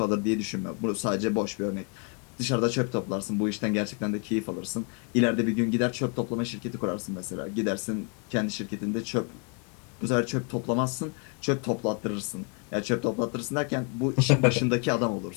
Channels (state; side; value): quieter; right; 36.1 dB